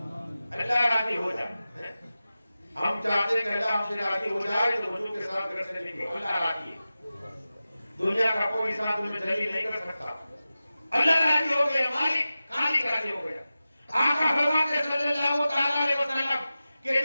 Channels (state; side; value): inverted; both; correlation -0.95